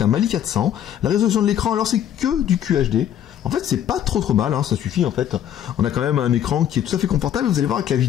un Mali 400. La résolution de l'écran, alors c'est que du QHD. En fait, c'est pas trop mal, hein, ça suffit en fait. On a quand même un écran qui est tout à fait confortable. Vous allez voir avec la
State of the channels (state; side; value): quieter; right; 10.3 dB